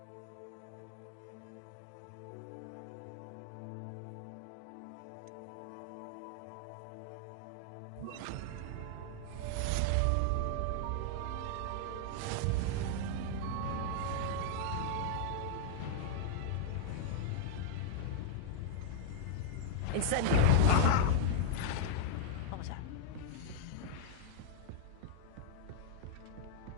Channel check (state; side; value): different; both; correlation -0.01